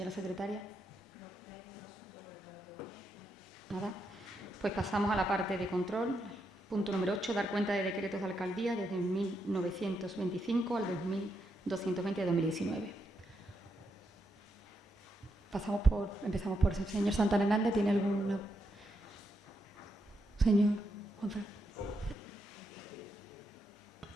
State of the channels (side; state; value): both; normal; correlation 0.81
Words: secretaria. Nada. Pues pasamos a la parte de control. Punto número 8, dar cuenta de decretos de alcaldía desde 1925 al 2220 de 2019. Empezamos por el señor Santana Hernández. ¿Tiene alguna? Señor Juanfran.